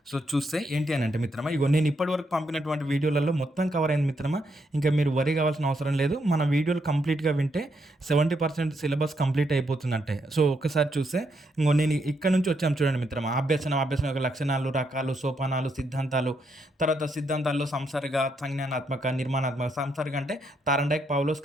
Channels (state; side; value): normal; both; correlation 0.78